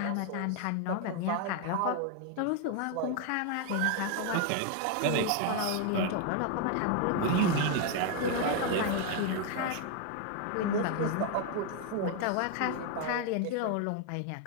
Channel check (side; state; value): both; different; correlation 0.01